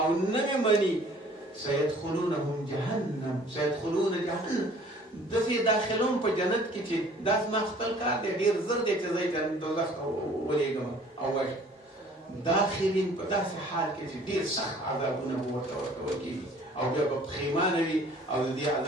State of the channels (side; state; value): both; normal; correlation 0.53